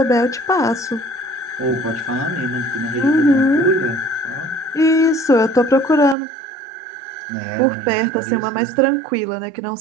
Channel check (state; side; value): drops out; left; at 6.2 s